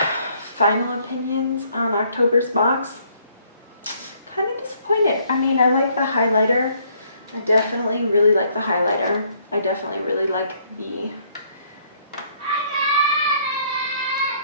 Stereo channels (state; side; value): inverted; both; correlation -0.66